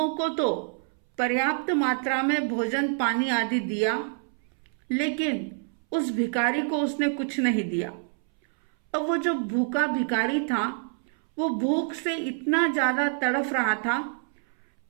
को तो पर्याप्त मात्रा में भोजन पानी आदि दिया, लेकिन उस भिखारी को उसने कुछ नहीं दिया। अब वो जो भूखा भिखारी था, वो भूख से इतना ज्यादा तड़फ रहा था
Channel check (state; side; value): silent; left; 60 dB below the other